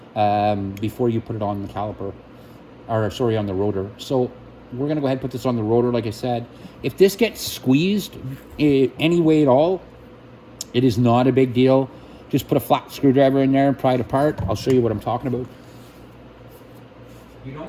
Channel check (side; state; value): both; identical; correlation 1.00